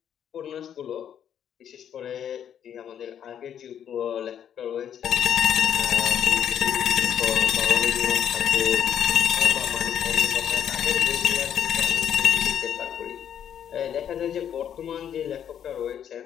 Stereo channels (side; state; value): right; quieter; 9.3 dB